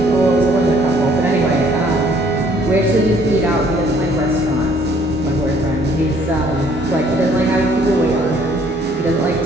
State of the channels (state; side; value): normal; both; correlation 0.61